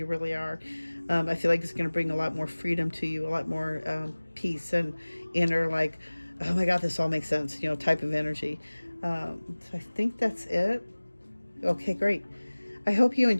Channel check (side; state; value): both; inverted; correlation -1.00